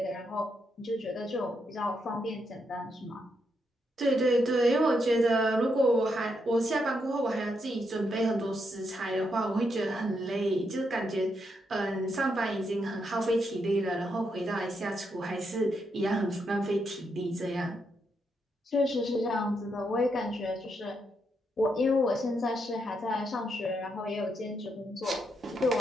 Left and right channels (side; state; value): both; normal; correlation 0.80